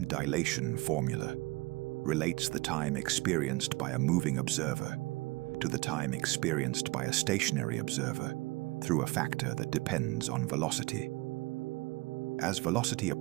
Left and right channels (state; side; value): quieter; left; 23.1 dB